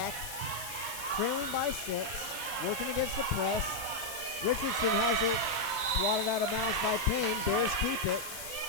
Trailing by 6. Working against the press. Richardson has it. Swatted out of bounds by Payne. Bears keep it.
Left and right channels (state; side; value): noise; left; hiss, 9 dB below the sound